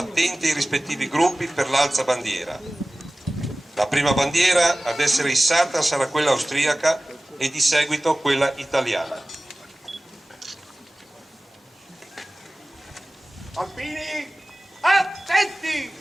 ai rispettivi gruppi per l'alzabandiera. La prima bandiera ad essere issata sarà quella austriaca e di seguito quella italiana. Alpini, attenti!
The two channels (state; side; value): normal; both; correlation 0.97